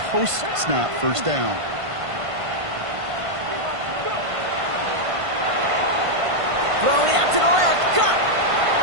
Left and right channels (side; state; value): left; late; 1.5 ms